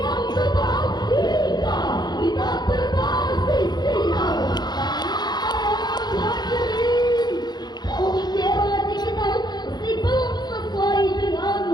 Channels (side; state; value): right; late; 0.20 ms